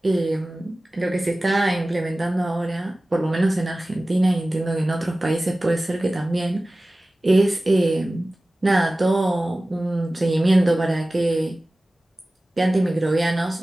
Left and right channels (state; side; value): normal; both; correlation 0.97